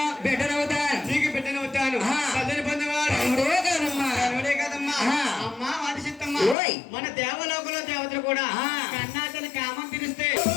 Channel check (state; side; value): drops out; right; at 6.6 s